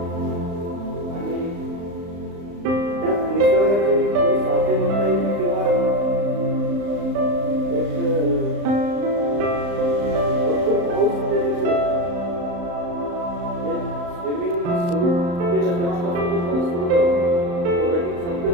आणि त्यात निसर्गाची थोडी साथे म्हणता येईल किंवा एक भरपूर पाऊस त्या दिवशी होता. स्विमिंग सुरू केलं तेव्हापासून तो पाऊस सुरू झाला. रनिंग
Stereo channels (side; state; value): left; late; 35 ms